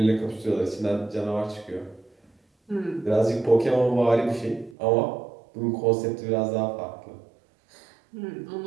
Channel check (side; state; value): left; drops out; at 4.8 s